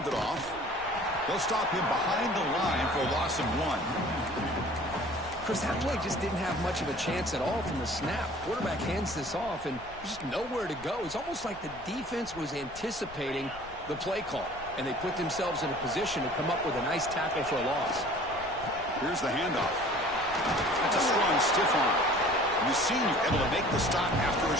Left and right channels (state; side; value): noise; left; rumble, 19 dB below the sound